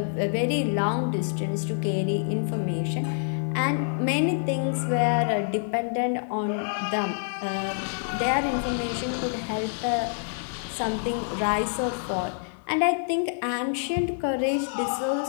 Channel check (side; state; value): right; silent; digital silence